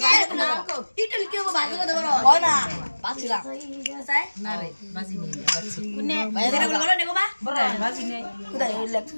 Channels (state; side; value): inverted; both; correlation -1.00